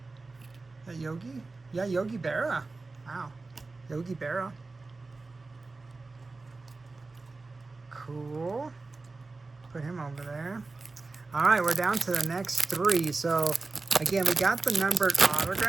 that Yogi? Yeah, Yogi Berra. Wow. Yogi Berra. Cool. Put him over there. All right, we're down to the next 3. So, again, we got the numbered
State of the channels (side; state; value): left; quieter; 3.7 dB